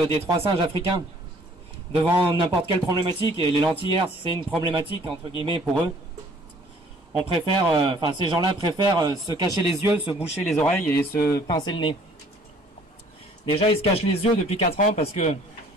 des 3 singes africains. Devant n'importe quelle problématique, et les Lentillères, c'est une problématique, entre guillemets, pour eux, on préfère, ces gens-là préfèrent se cacher les yeux, se boucher les oreilles et se pincer le nez. Déjà, ils se cachent les yeux depuis 4 ans parce que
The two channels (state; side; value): normal; both; correlation 0.57